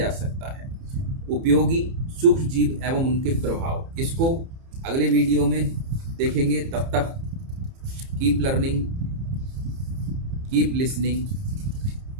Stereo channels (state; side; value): late; left; 30 ms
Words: सकता है। उपयोगी सूक्ष्म जीव एवं उनके प्रभाव, इसको अगले वीडियो में देखेंगे। तब तक keep learning, keep listening.